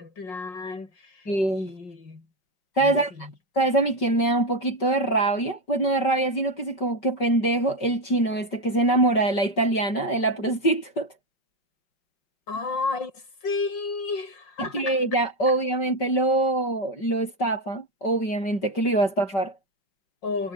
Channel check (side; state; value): right; late; 5.2 ms